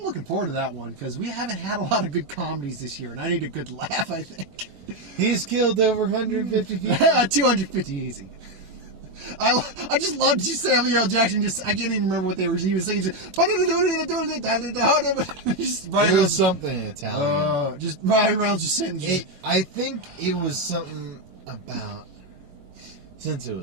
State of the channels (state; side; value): late; left; 21 ms